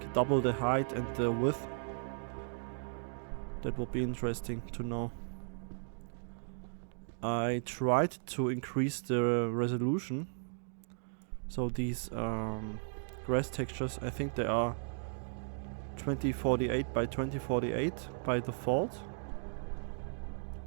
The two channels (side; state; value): left; silent; digital silence